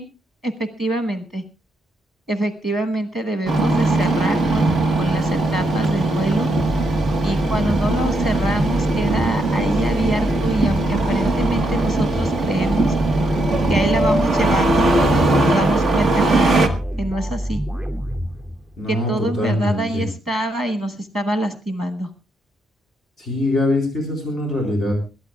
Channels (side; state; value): both; normal; correlation 0.79